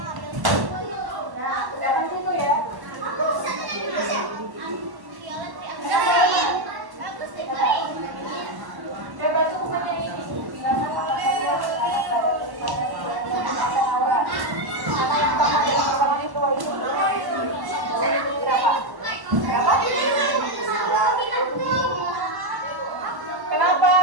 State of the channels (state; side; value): late; left; 1.1 ms